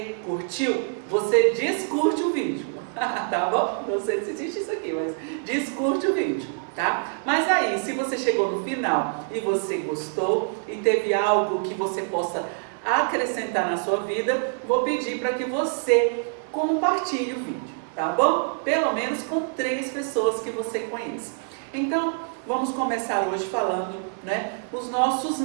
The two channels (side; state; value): left; silent; 55 dB below the other